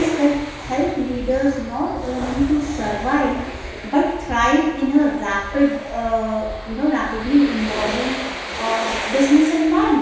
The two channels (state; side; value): identical; both; correlation 1.00